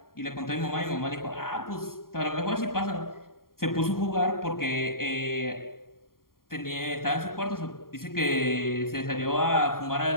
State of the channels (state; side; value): late; right; 0.92 ms